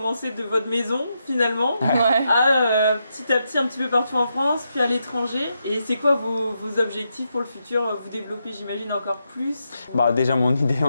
de votre maison finalement à petit à petit un petit peu partout en France, puis à l'étranger. Et c'est quoi vos objectifs pour le futur? Vous développez, j'imagine, encore plus? Déjà, mon idée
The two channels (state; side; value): inverted; both; correlation -0.84